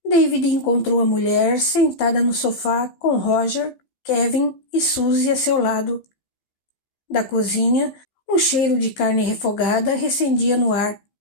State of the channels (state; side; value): late; right; 15 ms